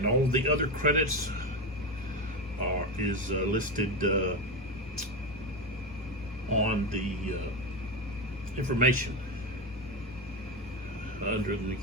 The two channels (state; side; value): normal; both; correlation 0.16